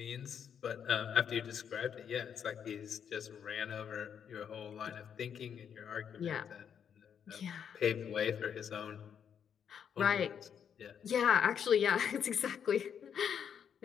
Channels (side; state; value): right; quieter; 8.0 dB